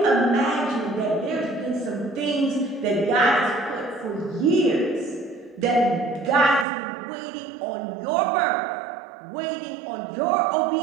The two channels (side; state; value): left; drops out; at 6.7 s